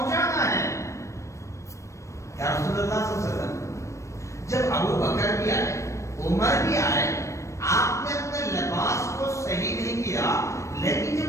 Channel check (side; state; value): right; late; 0.15 ms